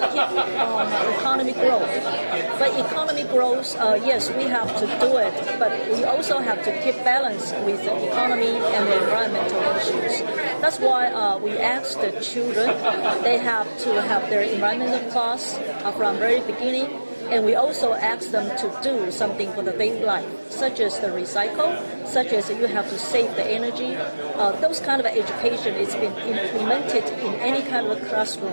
keep on economic growth. But economic growth, yes, we have to do it, but we also have to keep balance with the economy and the environmental issues. That's why we ask the children, they have to have their environmental class from very beginning. And we also ask them to do something for the daily life, such as the recycle, such as you have to save the energy. Those kind of education is been implemented in any kind of a classroom.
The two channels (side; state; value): both; inverted; correlation -1.00